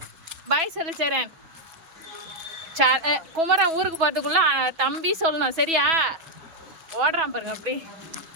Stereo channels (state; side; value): late; left; 6.1 ms